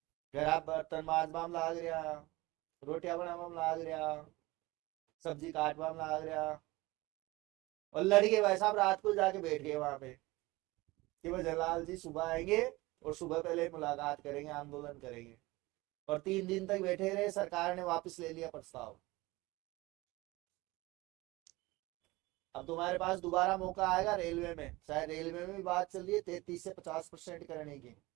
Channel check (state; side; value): quieter; left; 21.0 dB